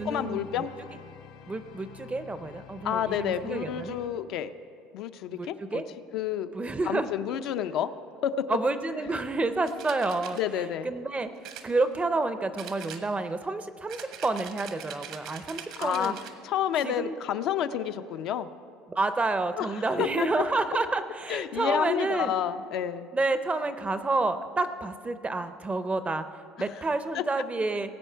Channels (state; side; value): normal; both; correlation 0.66